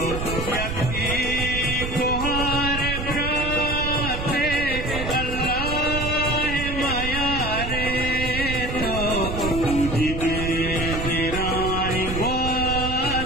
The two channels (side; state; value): right; noise; rumble, 5 dB below the sound